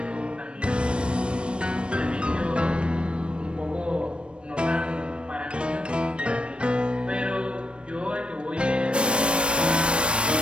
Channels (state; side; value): late; left; 0.058 ms